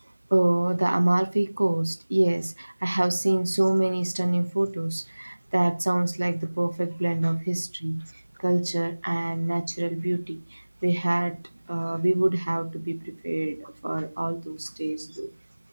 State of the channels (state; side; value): inverted; both; correlation -1.00